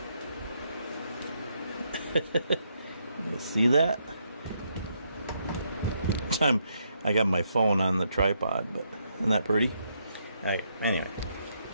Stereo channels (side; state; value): both; inverted; correlation -0.76